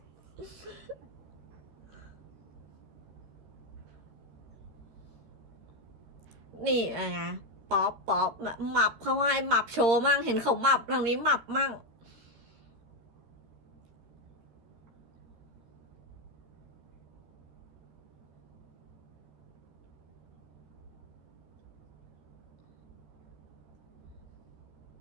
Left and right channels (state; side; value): late; left; 13 ms